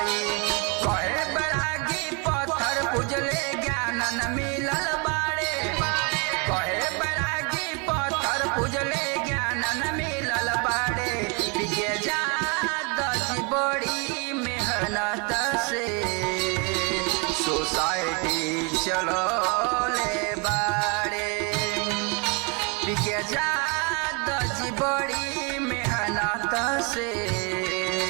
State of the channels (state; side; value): quieter; left; 31.0 dB